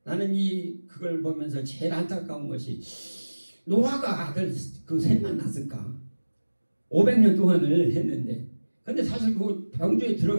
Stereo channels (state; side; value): inverted; both; correlation -1.00